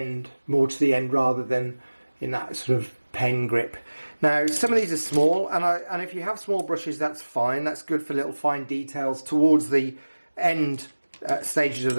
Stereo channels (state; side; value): inverted; both; correlation -1.00